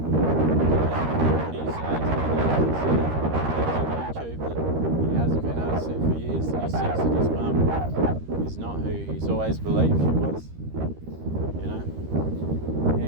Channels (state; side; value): late; left; 13 ms